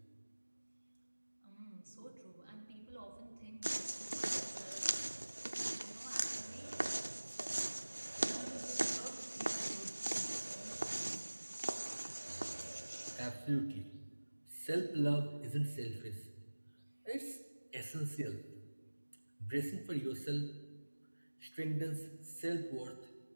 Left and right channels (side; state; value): both; inverted; correlation -1.00